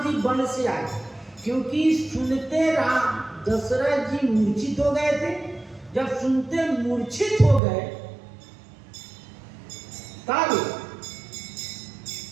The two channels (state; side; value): drops out; left; at 7.6 s